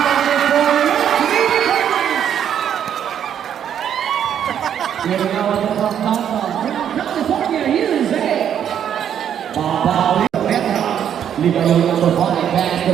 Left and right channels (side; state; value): left; quieter; 9.3 dB